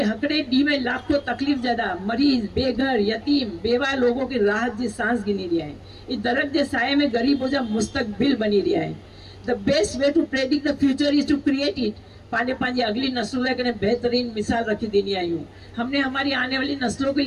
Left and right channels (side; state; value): both; identical; correlation 1.00